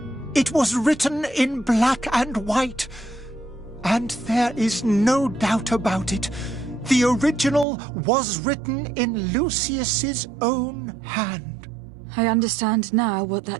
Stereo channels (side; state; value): left; drops out; at 7.7 s